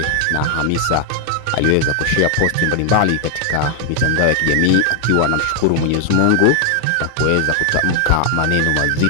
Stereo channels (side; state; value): both; different; correlation 0.01